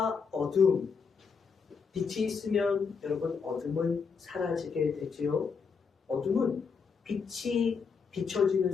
어둠. 빛이 있으면 여러분 어둠은 사라지게 되지요. 어둠은 빛이 비춰지는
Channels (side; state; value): right; quieter; 5.6 dB